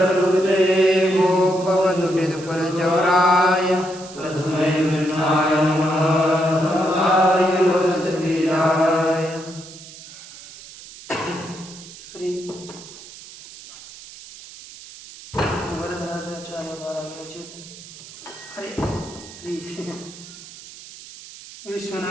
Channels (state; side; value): noise; right; hiss, 17 dB below the sound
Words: गोपवधुभिदुकुलचौराय तस्मै कृष्णाय नमः संसाय लोकसतीराय। श्री वरदराजाचार्य द्वारा विरचित अरे श्री